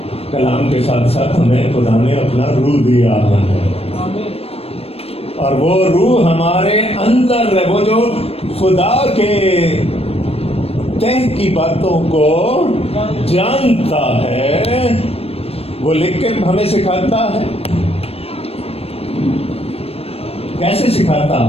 کلام کے ساتھ ساتھ ہمیں خدا نے اپنا روح دیا ہے, اور وہ روح ہمارے اندر ہے. وہ جو خدا کے تہ کی باتوں کو جانتا ہے وہ لکھ کے ہمیں سکھاتا ہے. کیسے سکھاتا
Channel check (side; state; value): right; late; 0.28 ms